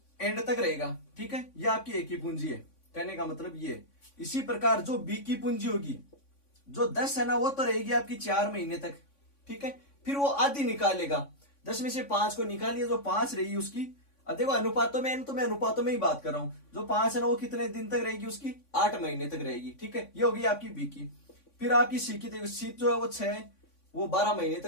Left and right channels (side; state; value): right; late; 3.5 ms